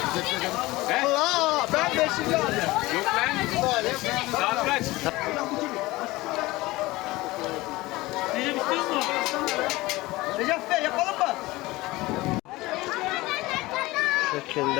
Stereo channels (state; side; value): quieter; right; 20.0 dB